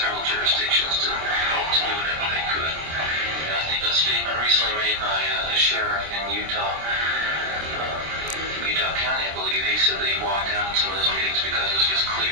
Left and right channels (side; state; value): left; late; 26 ms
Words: jurisdictions to do whatever they could. And I think a statement recently made by the sheriff in Utah County, I believe, he said that he walked out in some of those meetings because it was just